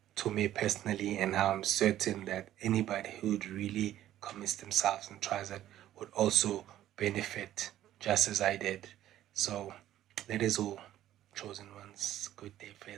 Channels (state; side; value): quieter; left; 12.9 dB